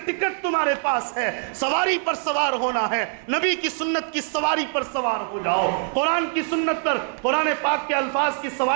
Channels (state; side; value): silent; left; 63 dB below the other